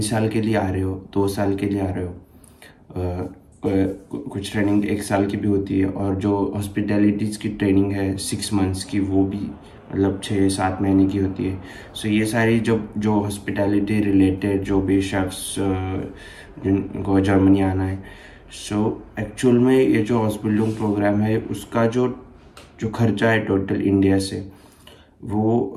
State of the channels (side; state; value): both; identical; correlation 1.00